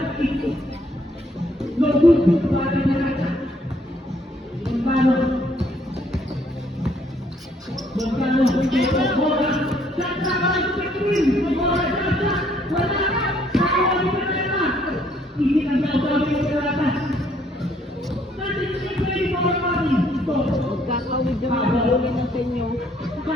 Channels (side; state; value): both; normal; correlation 0.66